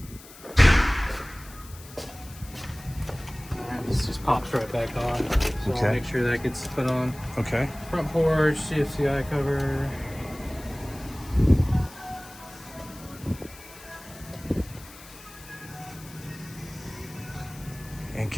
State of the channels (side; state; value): left; noise; hiss, 19 dB below the sound